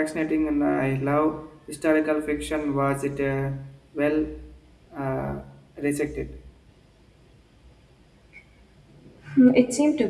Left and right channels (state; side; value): identical; both; correlation 1.00